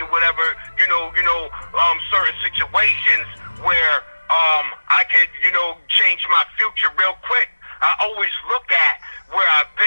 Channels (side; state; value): both; inverted; correlation -1.00